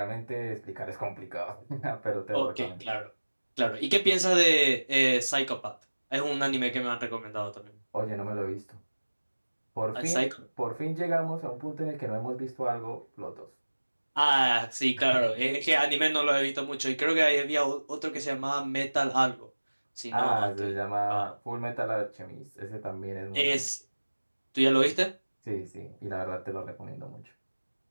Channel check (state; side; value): inverted; both; correlation -1.00